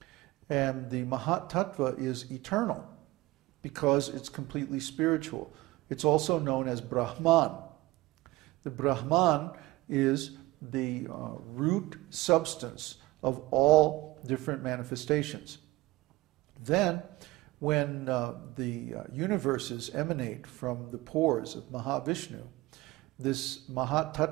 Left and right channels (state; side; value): quieter; left; 19.6 dB